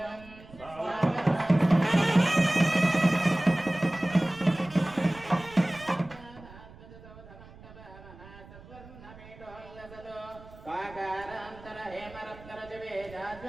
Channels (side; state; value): right; noise; rumble, 20 dB below the sound